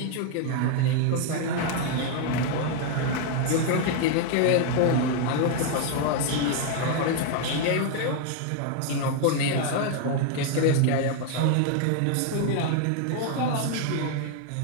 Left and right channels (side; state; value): both; different; correlation 0.01